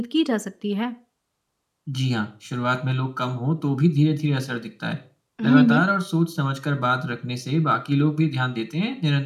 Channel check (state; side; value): identical; both; correlation 1.00